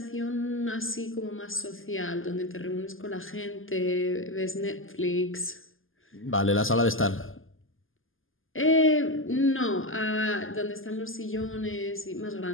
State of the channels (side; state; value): right; late; 0.59 ms